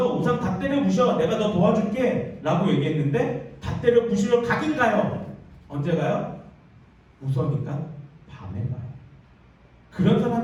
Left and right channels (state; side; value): identical; both; correlation 1.00